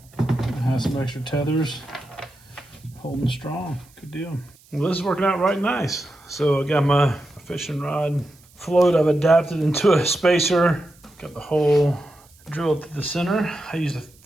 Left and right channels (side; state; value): right; noise; hiss, 28 dB below the sound